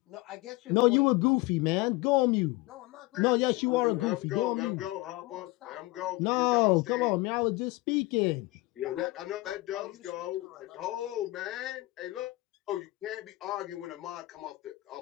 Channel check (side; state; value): right; quieter; 20.9 dB